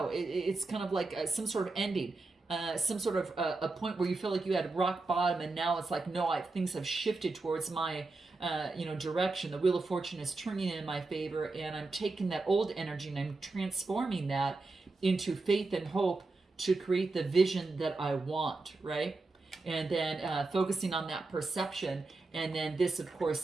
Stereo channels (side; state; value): left; quieter; 3.5 dB